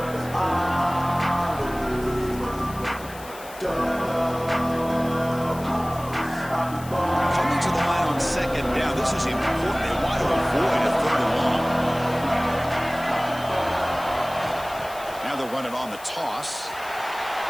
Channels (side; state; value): left; noise; hiss, 18 dB below the sound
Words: This is important. They want to avoid a 3rd and long. Now they'll run it on the toss.